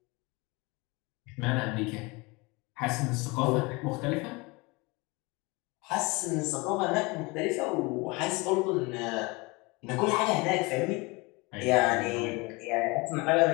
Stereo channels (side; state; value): right; quieter; 25.9 dB